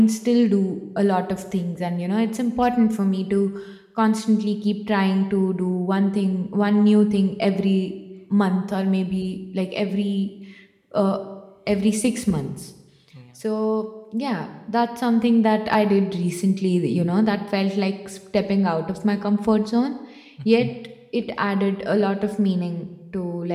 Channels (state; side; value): identical; both; correlation 1.00